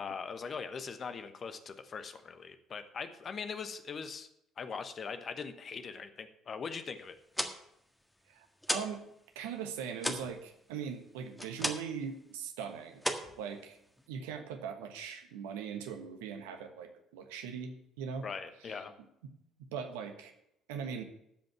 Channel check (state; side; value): normal; both; correlation 0.62